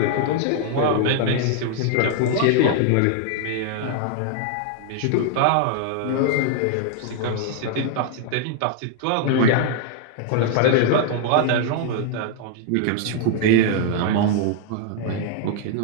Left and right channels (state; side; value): different; both; correlation 0.00